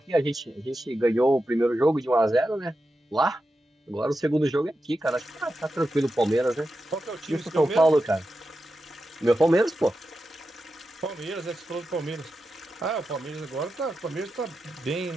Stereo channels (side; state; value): both; normal; correlation 0.90